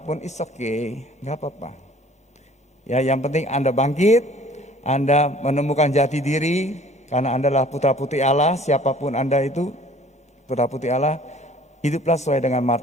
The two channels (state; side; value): normal; both; correlation 0.52